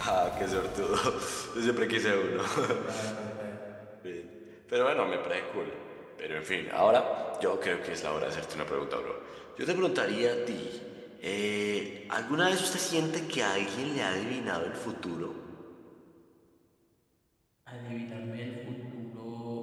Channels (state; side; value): identical; both; correlation 1.00